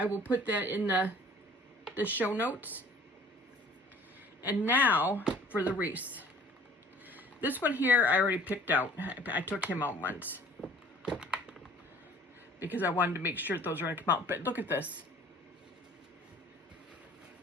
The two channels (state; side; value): normal; both; correlation 0.50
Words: will put that in the show notes. And now for the wreath. This one here I already picked out. I took him out once because I wanted to make sure those are going to come out. But look at this.